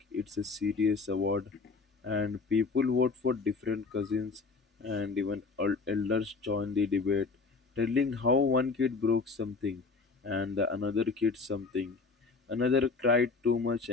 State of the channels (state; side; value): quieter; right; 4.4 dB